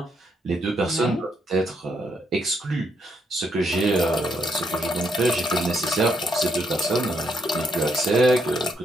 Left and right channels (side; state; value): both; normal; correlation 0.75